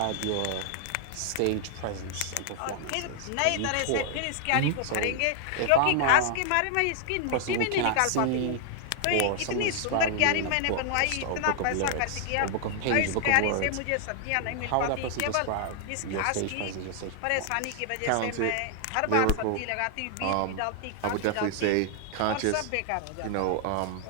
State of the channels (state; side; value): different; both; correlation 0.00